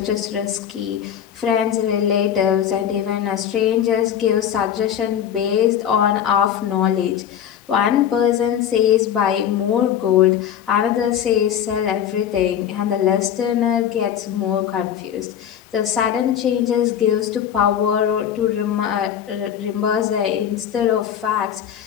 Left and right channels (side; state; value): right; quieter; 9.5 dB